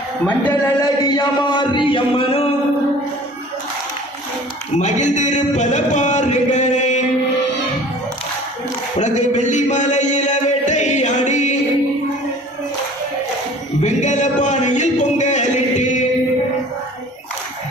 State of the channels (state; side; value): normal; both; correlation 0.46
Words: மஞ்சள் அழகிய மாறி அம்மனும் மகிழ்ந்திருப்பத பாருங்களே உனக்கு வெள்ளி மலையில வேட்டையாடி வெங்கல பானையில் பொங்கலிட்டு